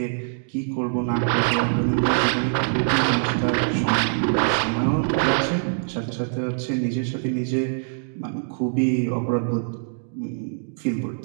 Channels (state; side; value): silent; left; digital silence